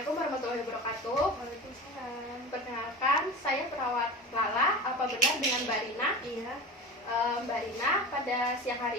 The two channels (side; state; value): both; normal; correlation 0.31